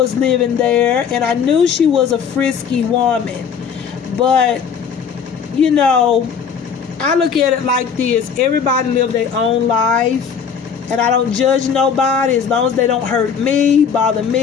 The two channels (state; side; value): quieter; right; 6.9 dB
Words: living there, and I knew she was a frisky woman. But, I look at it like this. Everybody live their own life, and I don't judge nobody as long as they don't hurt me, bother